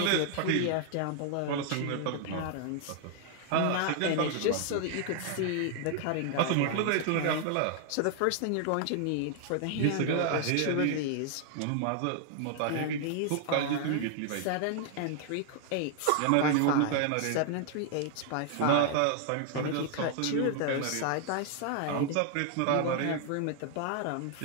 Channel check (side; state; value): both; different; correlation 0.00